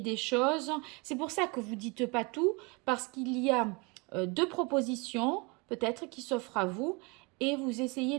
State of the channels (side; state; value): left; quieter; 29.0 dB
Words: choses. C'est pour ça que vous ne dites pas tout, parce qu'il y a deux propositions, peut-être, qui s'offrent à vous. Et vous